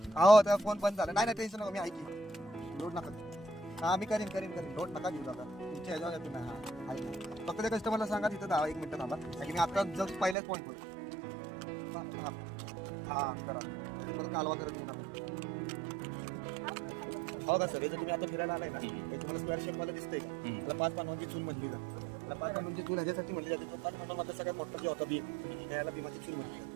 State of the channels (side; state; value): left; drops out; at 10.4 s